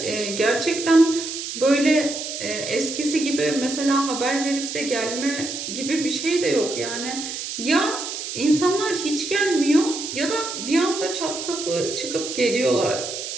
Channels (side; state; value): right; noise; hiss, 6 dB below the sound